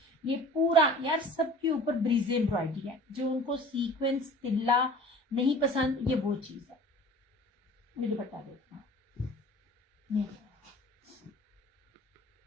ये पूरा यार सबके ऊपर ब्रीजे एम्ब्रॉयडरी है, जो उनको सीक्वेंस तिल्ला नहीं पसंद, ये वो चीज है। ये दुपट्टा देखना,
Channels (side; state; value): both; normal; correlation 0.44